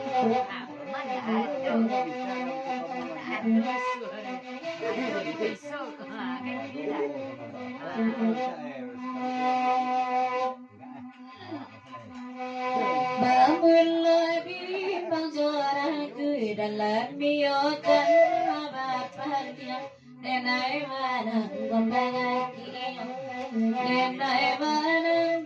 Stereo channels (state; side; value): identical; both; correlation 1.00